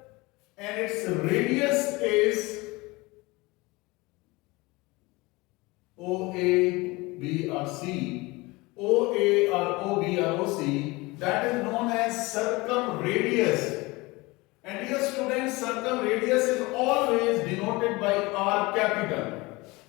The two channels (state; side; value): quieter; right; 23.1 dB